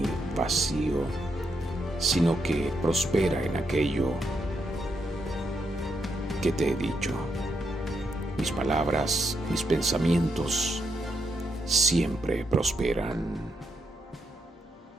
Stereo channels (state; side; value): normal; both; correlation 0.79